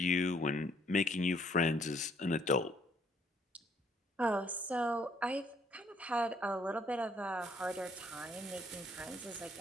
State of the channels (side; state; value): both; normal; correlation 0.66